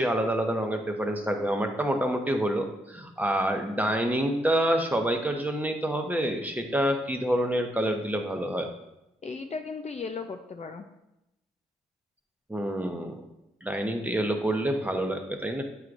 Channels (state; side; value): normal; both; correlation 0.77